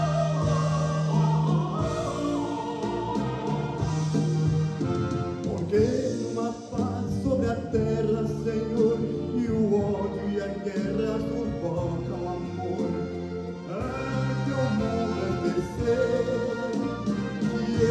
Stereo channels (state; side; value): identical; both; correlation 1.00